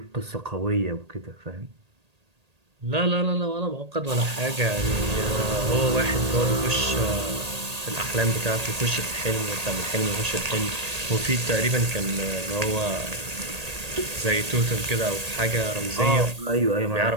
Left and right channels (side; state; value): left; late; 1.8 ms